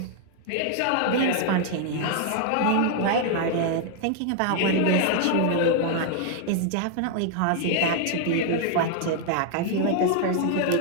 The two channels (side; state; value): both; different; correlation 0.00